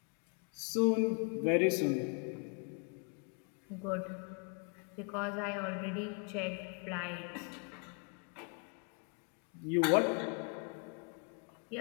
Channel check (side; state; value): right; quieter; 39.4 dB